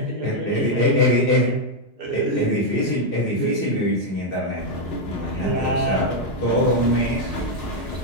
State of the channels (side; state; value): both; normal; correlation 0.00